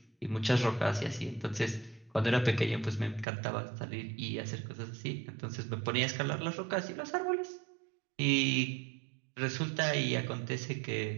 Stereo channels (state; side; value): drops out; left; at 3.2 s